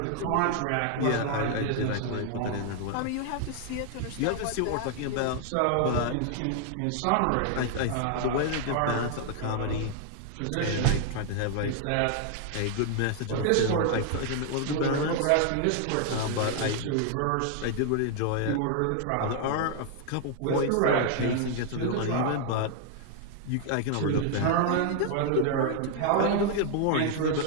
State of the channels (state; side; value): different; both; correlation 0.00